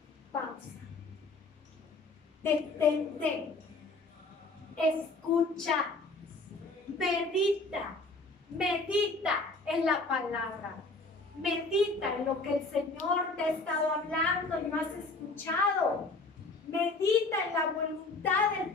pausa. Detente, escucha, medita en la palabra, medita en lo que el Señor te ha estado hablando y no has escuchado, medita en la voluntad del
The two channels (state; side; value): quieter; right; 3.3 dB